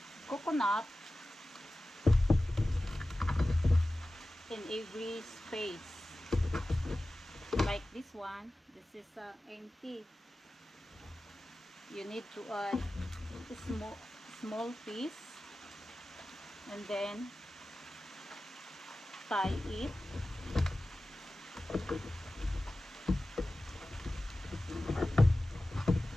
coconut in every space. Like this one, this is empty. You need to add a small piece and then tie it.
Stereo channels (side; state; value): both; normal; correlation 0.96